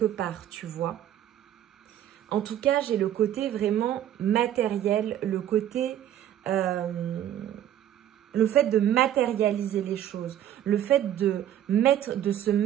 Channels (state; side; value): quieter; left; 11.3 dB